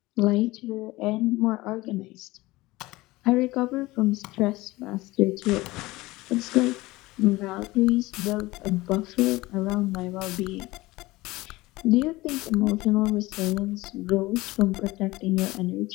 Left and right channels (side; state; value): right; quieter; 19.9 dB